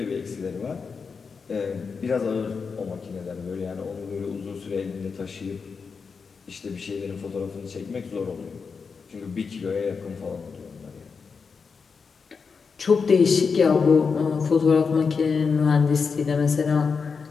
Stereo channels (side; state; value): right; quieter; 5.3 dB